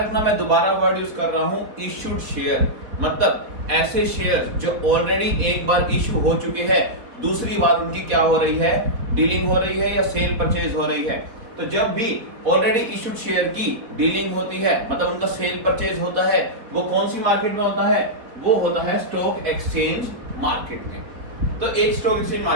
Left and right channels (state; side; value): late; left; 4.3 ms